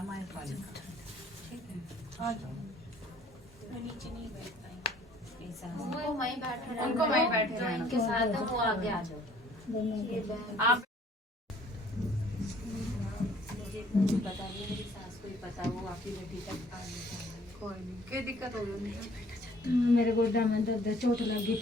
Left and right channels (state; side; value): normal; both; correlation 0.58